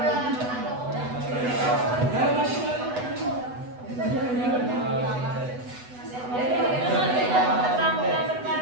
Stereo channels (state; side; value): late; left; 8.1 ms